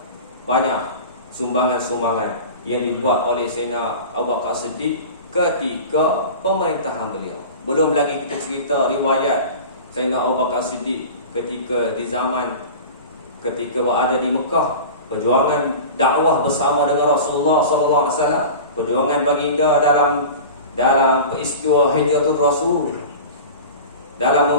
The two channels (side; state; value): both; inverted; correlation -0.35